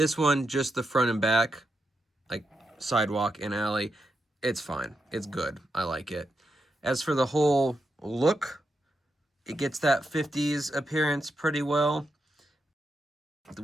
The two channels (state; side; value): normal; both; correlation 0.85